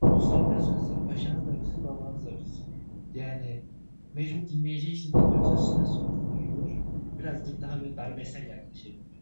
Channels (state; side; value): inverted; both; correlation -1.00